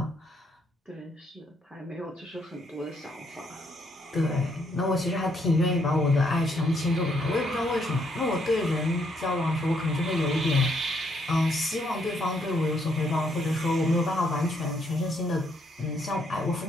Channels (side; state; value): both; normal; correlation 0.72